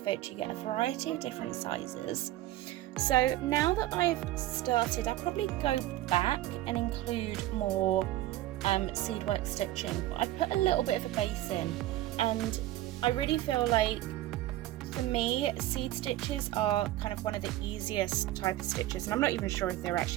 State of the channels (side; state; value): left; quieter; 15.2 dB